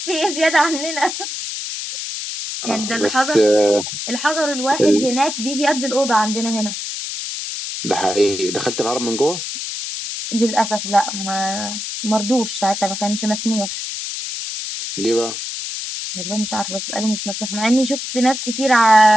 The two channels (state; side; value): noise; left; hiss, 6 dB below the sound